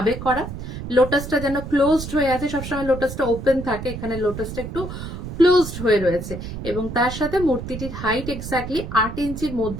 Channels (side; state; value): right; noise; rumble, 8 dB below the sound